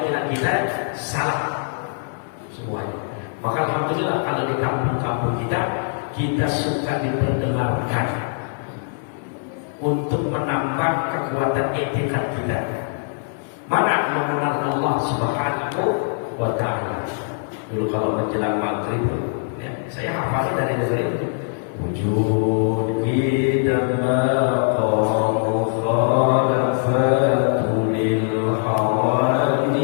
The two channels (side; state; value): right; silent; digital silence